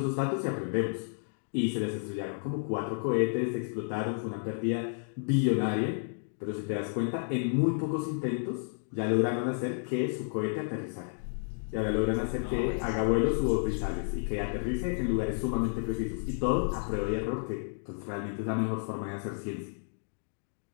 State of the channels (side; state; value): right; silent; digital silence